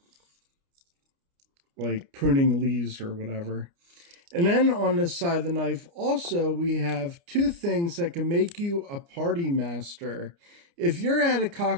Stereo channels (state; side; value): late; left; 29 ms